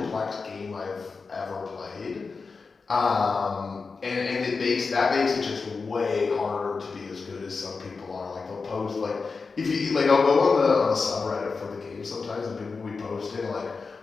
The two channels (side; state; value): right; quieter; 4.6 dB